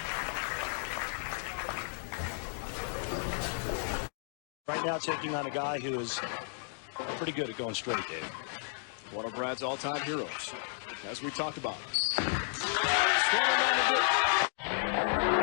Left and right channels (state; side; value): silent; right; digital silence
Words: Right now taking on a guy who is pretty good at going straight, Dave. One of Brad's all-time heroes, as we talked about.